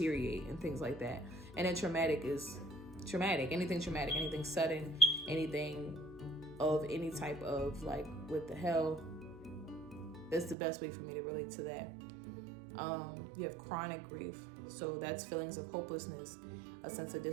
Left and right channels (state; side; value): drops out; left; at 10.6 s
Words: and things like that. And then traumatic is traumatic. Anything traumatic, anything sudden, anything of any type of like, what the hell? That's the best way for me to relate to that. You have chronic grief. So that's feelings of hopelessness, a sense of